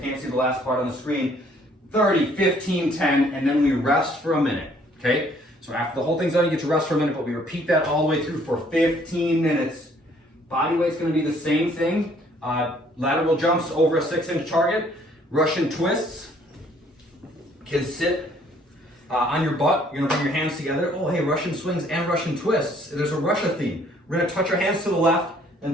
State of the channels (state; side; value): normal; both; correlation 0.61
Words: see the last part on the screen, 30, 15, 10, and then we rest for a minute, okay? So after the whole thing's done, you get to rest for a minute, but we repeat that all the way through for 15 minutes. Body weight's gonna be the same thing. Lateral jumps over a 6-inch target. Russian twists can sit on your butt. You're gonna bring your hands together. Oh, hey, Russian swings and Russian twists. There's a Russia theme. We're gonna touch our hands to the left and